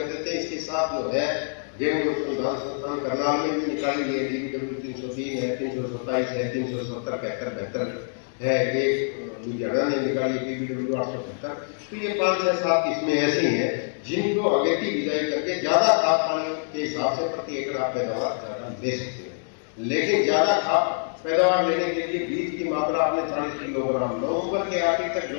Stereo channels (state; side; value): silent; right; digital silence